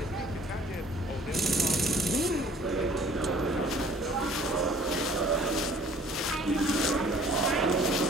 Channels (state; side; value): normal; both; correlation 0.54